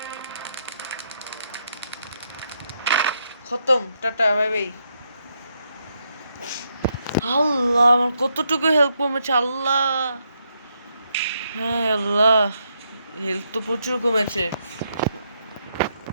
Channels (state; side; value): inverted; both; correlation -0.78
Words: খতম, টাটা, বাই বাই। আল্লাহ, আমার কতটুকু হেল্প কমেছে আল্লাহ। হ্যাঁ আল্লাহ, হেল্প তো প্রচুর কমেছে।